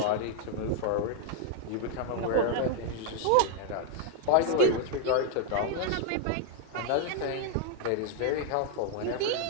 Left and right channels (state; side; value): different; both; correlation 0.00